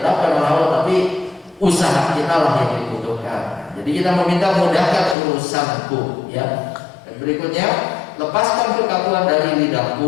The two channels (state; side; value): drops out; right; at 5.2 s